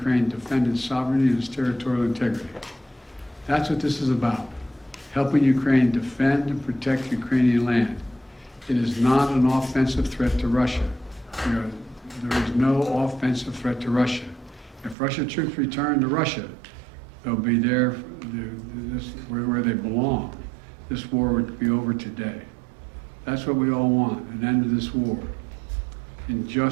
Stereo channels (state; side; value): drops out; left; at 15.0 s